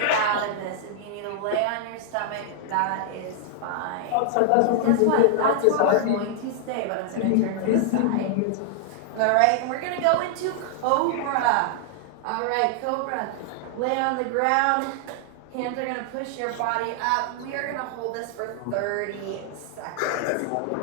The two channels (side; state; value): both; different; correlation -0.01